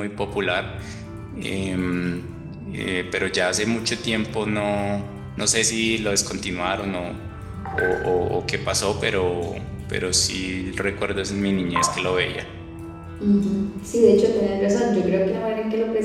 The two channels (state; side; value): identical; both; correlation 1.00